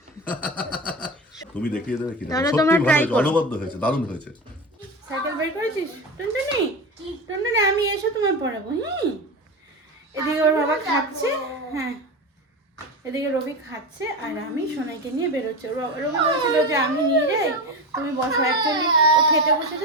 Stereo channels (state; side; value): normal; both; correlation 0.23